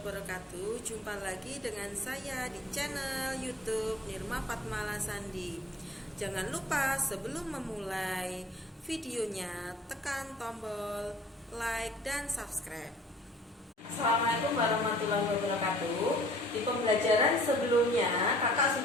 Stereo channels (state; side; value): normal; both; correlation 0.53